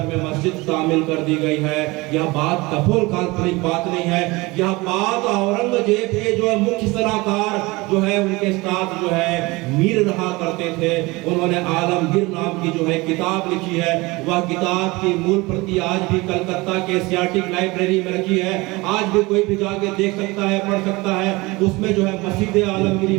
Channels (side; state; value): left; quieter; 22.9 dB